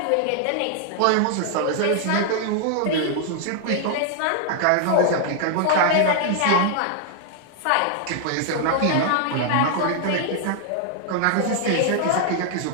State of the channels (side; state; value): both; different; correlation -0.01